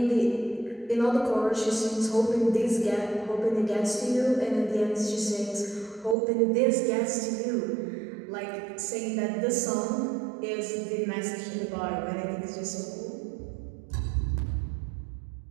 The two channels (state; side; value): drops out; left; at 6.2 s